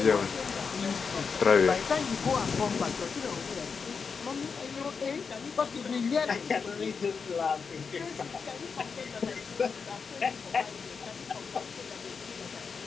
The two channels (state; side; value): quieter; right; 5.5 dB